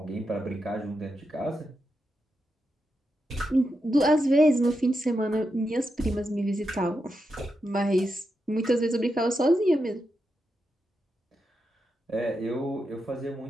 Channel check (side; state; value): both; normal; correlation 0.86